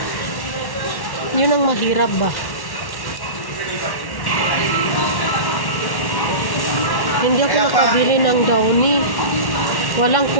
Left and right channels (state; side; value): late; right; 1.1 ms